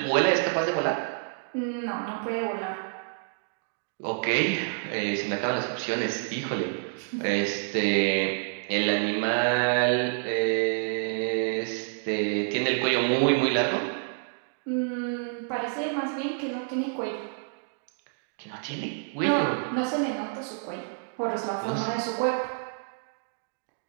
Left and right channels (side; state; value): left; silent; digital silence